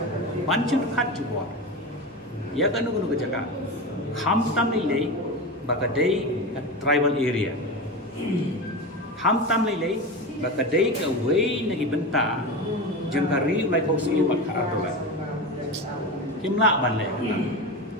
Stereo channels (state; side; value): normal; both; correlation 0.23